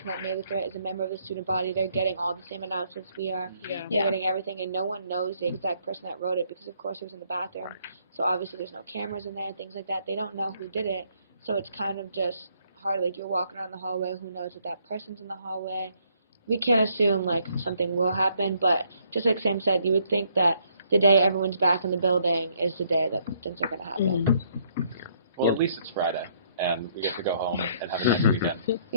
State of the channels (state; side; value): inverted; both; correlation -0.68